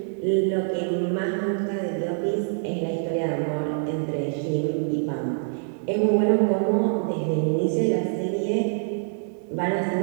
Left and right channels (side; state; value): left; silent; 62 dB below the other